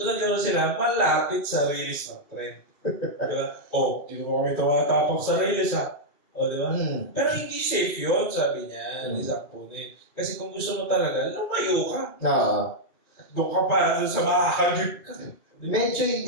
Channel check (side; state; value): right; late; 2.3 ms